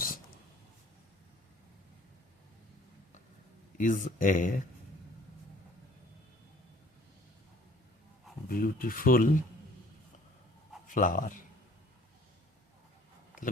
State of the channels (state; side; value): normal; both; correlation 0.54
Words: is a beautiful flower, তাহলে